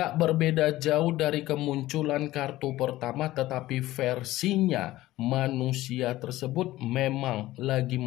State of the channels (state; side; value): quieter; right; 16.4 dB